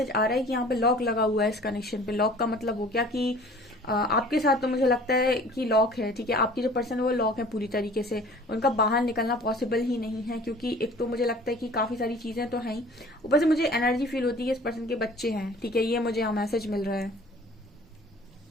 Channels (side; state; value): both; normal; correlation 0.48